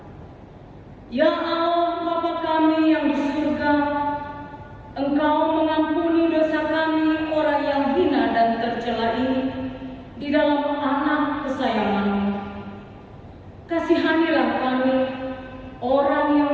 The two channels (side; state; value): both; identical; correlation 1.00